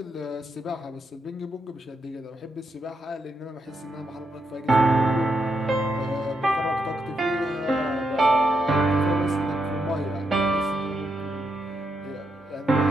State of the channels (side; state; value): both; normal; correlation 0.81